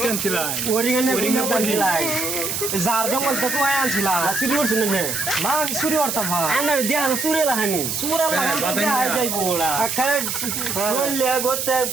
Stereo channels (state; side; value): noise; right; hiss, 2 dB below the sound